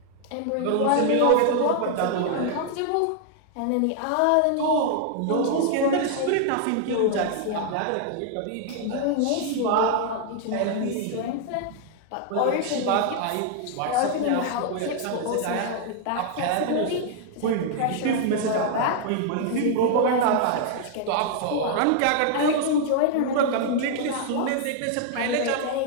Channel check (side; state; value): both; different; correlation 0.00